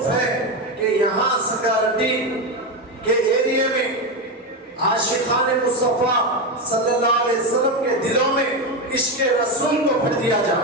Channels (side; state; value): both; normal; correlation 0.13